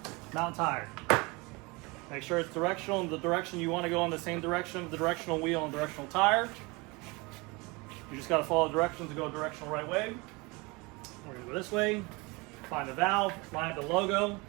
Mount tire. Make sure it's directional in the direction you want to go, in the same direction, the directional wheel and directional tire. You just got to follow directions to go directional right way. We're going to go this way. Find the valve, line up the logo.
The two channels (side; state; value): left; quieter; 26.1 dB